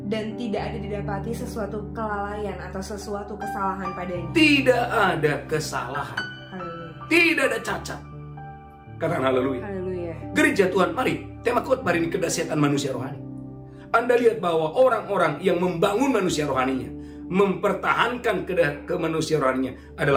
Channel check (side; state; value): both; identical; correlation 1.00